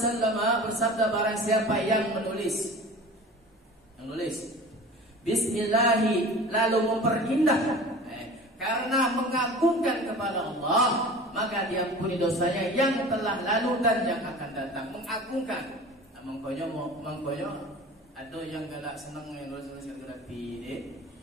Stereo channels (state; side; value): normal; both; correlation 0.39